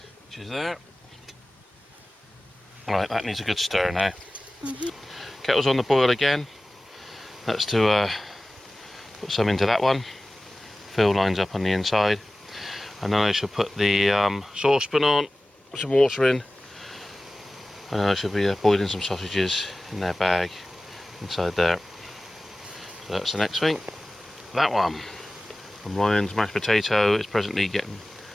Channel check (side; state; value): both; normal; correlation 0.97